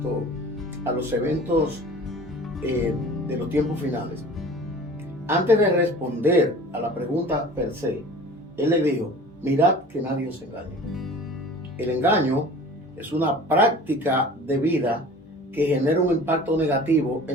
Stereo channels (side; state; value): both; normal; correlation 0.42